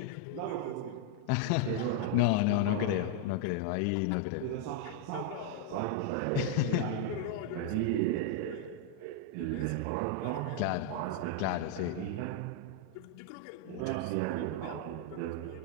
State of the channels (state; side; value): different; both; correlation 0.00